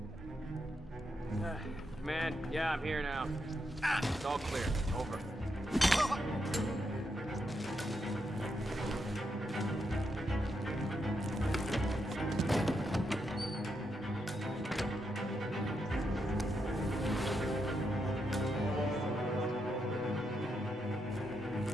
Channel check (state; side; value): normal; both; correlation 0.82